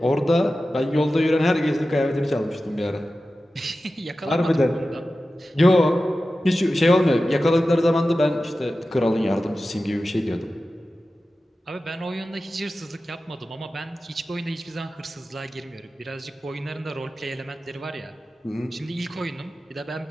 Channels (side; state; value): both; normal; correlation 0.94